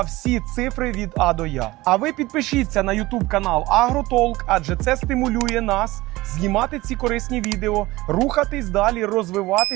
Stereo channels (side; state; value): left; quieter; 19.5 dB